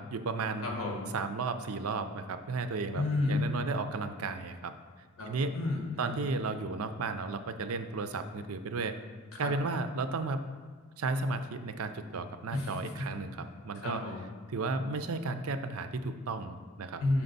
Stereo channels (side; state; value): both; normal; correlation 0.42